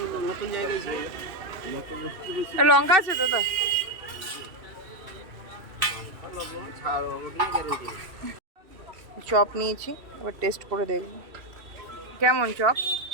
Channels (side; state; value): left; late; 2.7 ms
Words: লঙ্কা আছে তো? চপ নিয়েছি, এবার টেস্ট করে দেখব কেমন চপ।